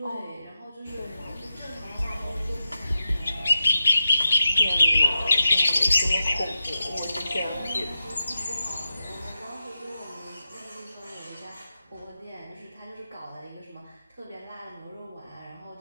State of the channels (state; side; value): inverted; both; correlation -0.91